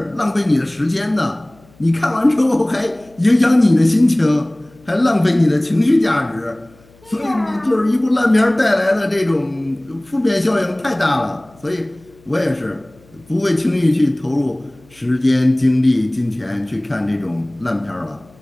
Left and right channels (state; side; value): noise; left; hum, 29 dB below the sound